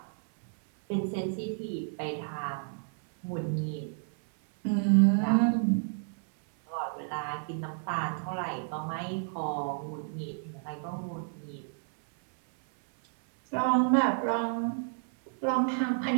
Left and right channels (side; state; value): left; silent; 57 dB below the other